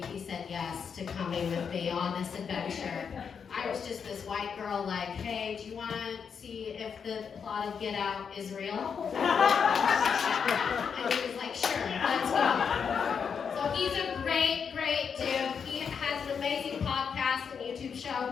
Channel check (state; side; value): quieter; right; 6.6 dB